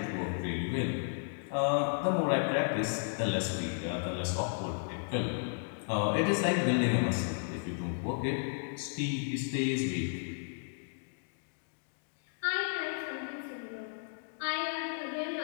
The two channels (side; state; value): right; silent; digital silence